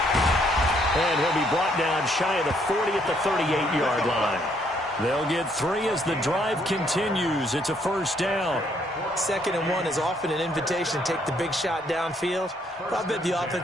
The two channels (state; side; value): normal; both; correlation 0.69